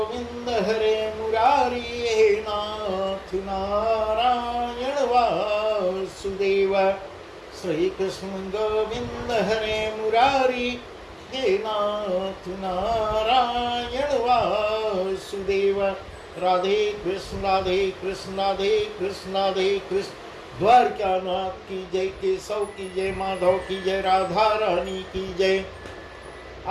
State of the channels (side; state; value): both; identical; correlation 1.00